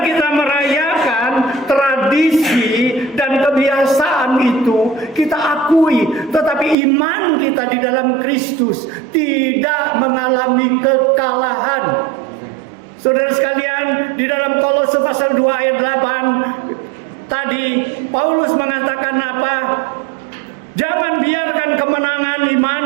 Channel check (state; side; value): drops out; left; at 6.8 s